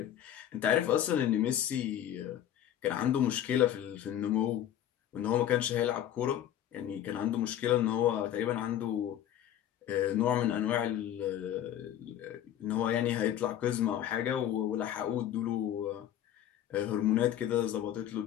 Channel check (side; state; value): right; quieter; 11.1 dB